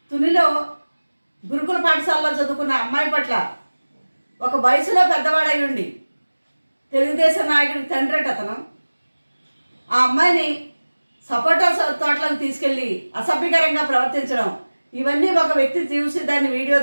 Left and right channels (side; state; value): both; inverted; correlation -1.00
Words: తునిలో గురుకుల పాఠశాలలో చదువుకున్న అమ్మాయి పట్ల ఒక వయసులో పెద్దవాడై ఉండి తెలుగుదేశం నాయకుడికి తండ్రి అతను ఆ అమ్మాయిని సపోటా తోటలకు తీసుకెళ్లి అసభ్యకరంగా ప్రవర్తించడం, ఇవన్నీ ఒక వ్యక్తి చూసి దాన్ని వీడియో